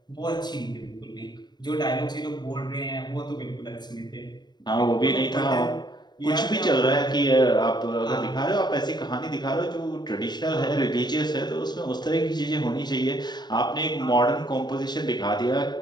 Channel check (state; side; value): late; right; 0.21 ms